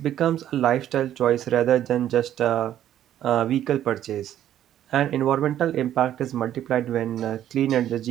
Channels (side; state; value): left; quieter; 11.4 dB